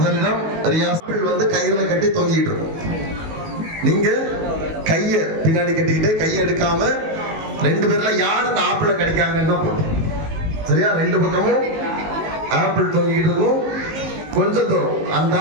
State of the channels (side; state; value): left; late; 19 ms